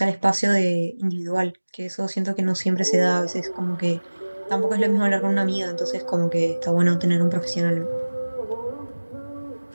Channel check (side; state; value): both; inverted; correlation -1.00